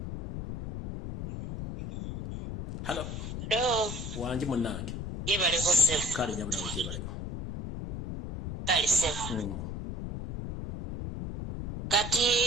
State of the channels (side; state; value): left; noise; rumble, 3 dB below the sound